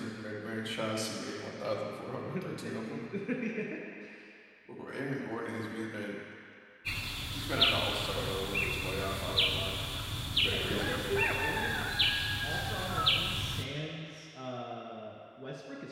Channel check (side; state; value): both; identical; correlation 1.00